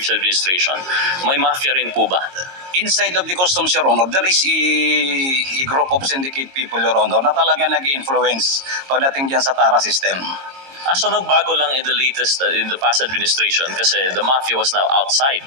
administration, may Mafia rin po ba? Inside of the customs, Your Honor, there is a group of syndicate people, Your Honor, na talaga nag-influence pagdating dyan sa TARA system. So nagbago lang in the past administration kasi the mafia was now outside.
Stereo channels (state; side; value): late; left; 22 ms